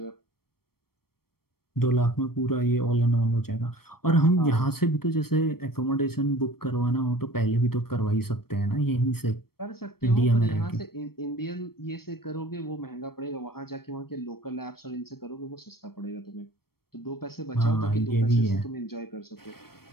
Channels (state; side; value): late; right; 0.94 ms